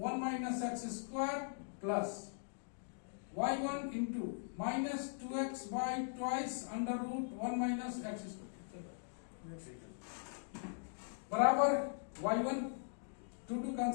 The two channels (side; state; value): right; silent; digital silence